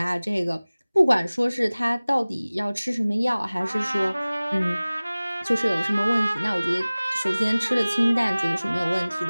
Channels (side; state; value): both; inverted; correlation -0.99